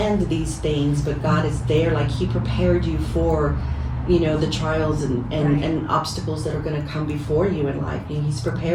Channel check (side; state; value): both; identical; correlation 1.00